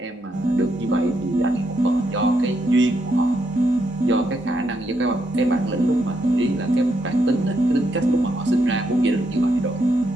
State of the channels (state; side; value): normal; both; correlation 0.78